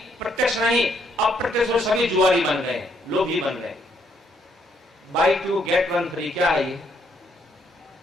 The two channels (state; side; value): normal; both; correlation 0.72